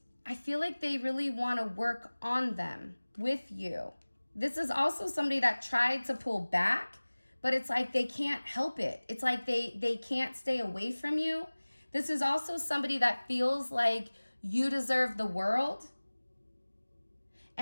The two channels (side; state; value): both; inverted; correlation -1.00